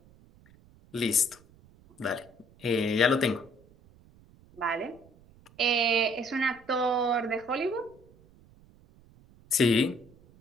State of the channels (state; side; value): noise; right; rumble, 27 dB below the sound